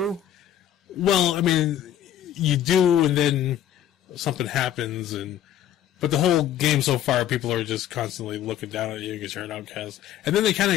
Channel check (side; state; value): right; quieter; 10.9 dB